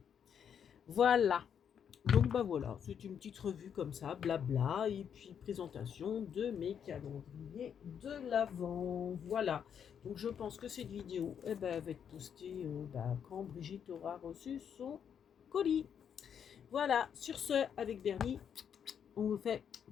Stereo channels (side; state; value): right; quieter; 8.0 dB